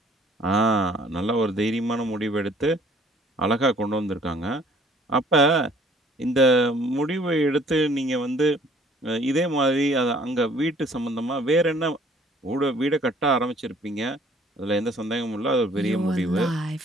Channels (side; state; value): both; normal; correlation 0.57